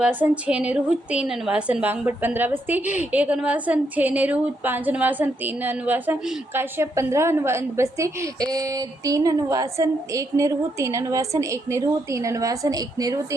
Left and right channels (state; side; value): normal; both; correlation 0.78